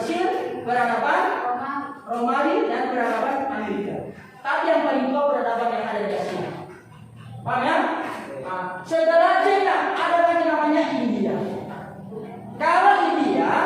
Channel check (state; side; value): identical; both; correlation 1.00